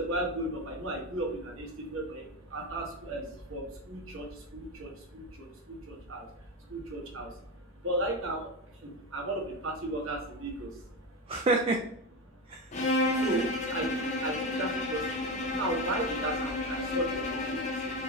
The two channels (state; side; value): normal; both; correlation 0.17